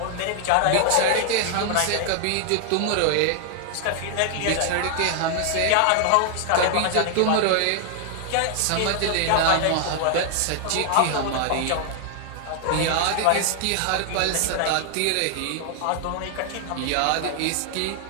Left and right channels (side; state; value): both; different; correlation 0.00